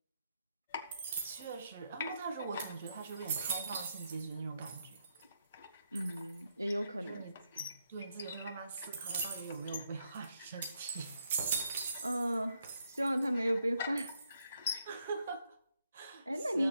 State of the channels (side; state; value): both; inverted; correlation -0.79